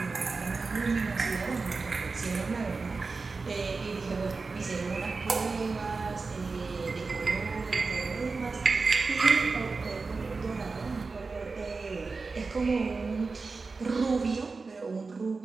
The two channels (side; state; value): left; quieter; 4.2 dB